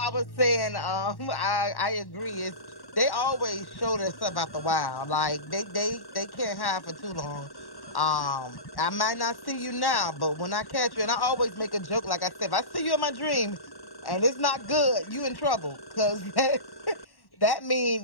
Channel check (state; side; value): late; right; 1.1 ms